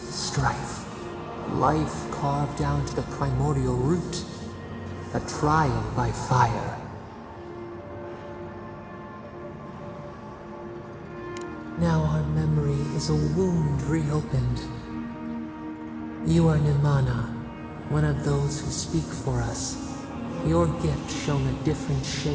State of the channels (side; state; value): both; identical; correlation 1.00